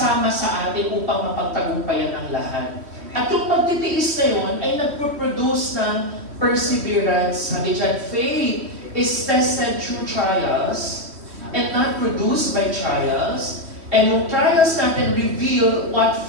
sa atin upang mapagtagumpayan ang lahat. At yung pagtitiis na yun ay nagproproduce ng perseverance. Sabi dyan, faith is tested through trials and not produced by trials. And yung trials natin reveal what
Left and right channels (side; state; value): left; late; 3.1 ms